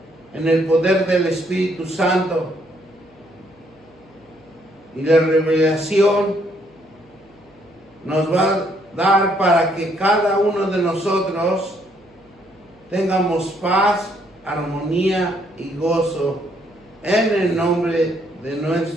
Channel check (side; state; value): left; noise; hum, 29 dB below the sound